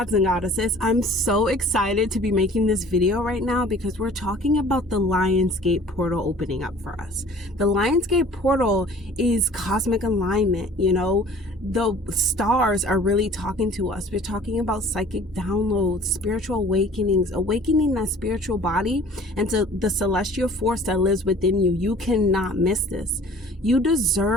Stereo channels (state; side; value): normal; both; correlation 0.49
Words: and goddesses, I'm so excited to be making this video right now because we're talking about the Lionsgate portal opening up for us. The Lionsgate portal is cosmic alignment, the stars are really talking to us. We're talking about psychic downloads, spiritual awakenings, awakening that spiritual body and to the celestial force that lives within you. You cannot miss this. You